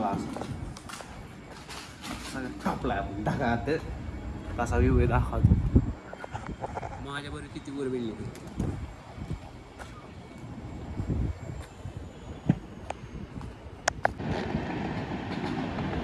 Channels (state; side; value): identical; both; correlation 1.00